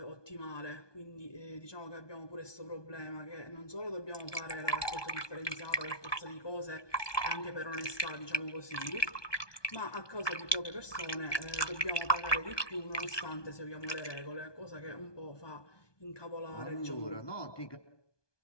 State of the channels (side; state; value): right; late; 1.2 ms